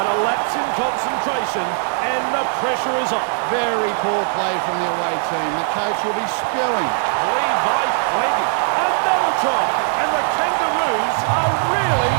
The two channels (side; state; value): left; silent; 59 dB below the other